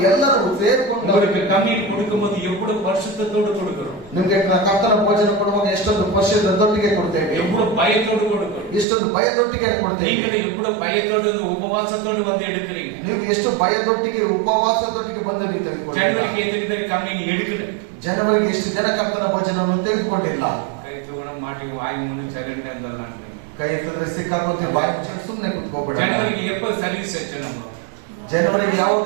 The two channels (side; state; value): left; drops out; at 8.8 s